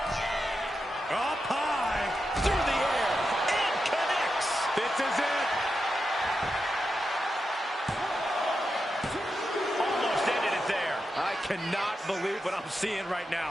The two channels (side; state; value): both; normal; correlation 0.88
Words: Up high. Through the air. And connects. This is it. Almost ended it there. I cannot believe what I'm seeing right